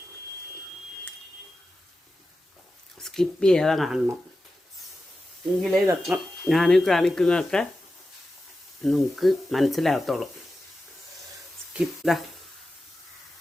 സ്കിപ്പ് ചെയ്യാതെ കാണണം, എങ്കിലേ ഇതൊക്കെ ഞാൻ കാണിക്കുന്നതൊക്കെ നിങ്ങൾക്ക് മനസ്സിലാകത്തുള്ളൂ. സ്കിപ്പ്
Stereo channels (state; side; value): normal; both; correlation 0.92